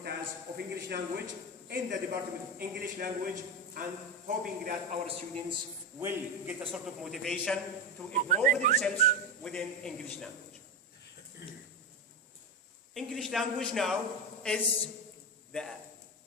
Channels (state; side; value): normal; both; correlation 0.15